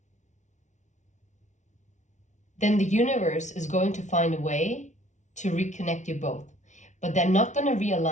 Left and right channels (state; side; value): late; right; 0.35 ms